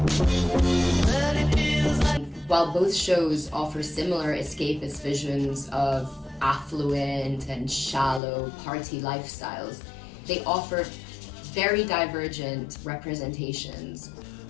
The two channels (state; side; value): drops out; right; at 8.2 s